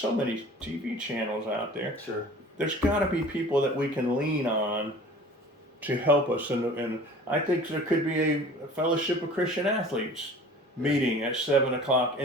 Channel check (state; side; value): normal; both; correlation 0.44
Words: many TV channels out there. Sure. There's got to be people that we can lean on to help us. And I think there could be a Fellowship of Christian Athletes meeting at 7 o'clock